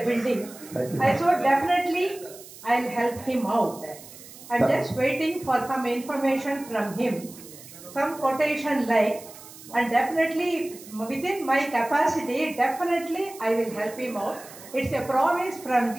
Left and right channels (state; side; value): noise; right; hiss, 18 dB below the sound